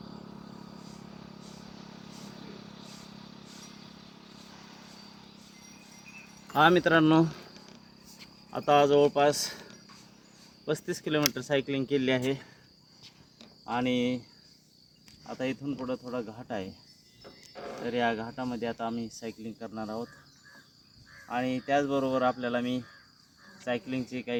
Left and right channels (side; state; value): both; identical; correlation 1.00